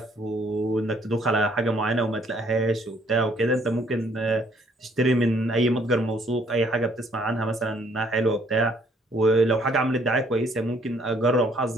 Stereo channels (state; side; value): normal; both; correlation 0.64